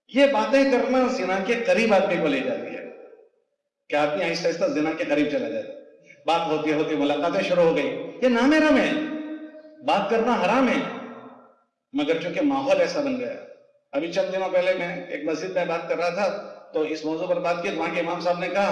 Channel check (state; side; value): identical; both; correlation 1.00